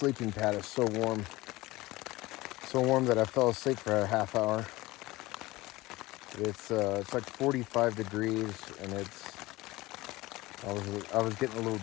pad is so warm that I fell asleep for a half hour. It's like 45 degrees, and I was getting a little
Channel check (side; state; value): right; quieter; 19.7 dB